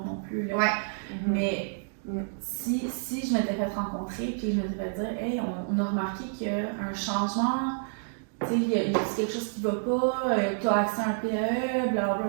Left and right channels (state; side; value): silent; left; digital silence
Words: non plus. Là. Mais si je m'étais fait rencontrer puis je m'étais fait dire, hey, on a remarqué qu'il y a un changement, tu sais, il y a quelque chose qui va pas, tu as accès à un PE,